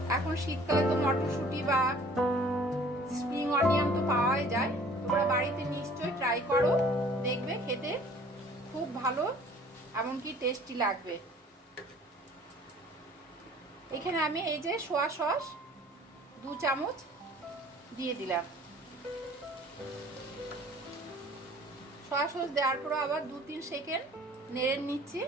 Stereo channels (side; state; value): both; normal; correlation 0.52